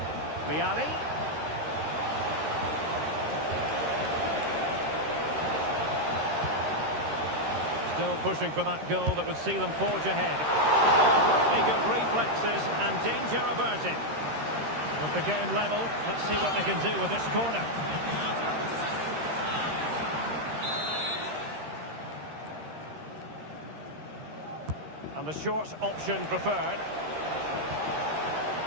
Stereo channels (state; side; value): late; left; 13 ms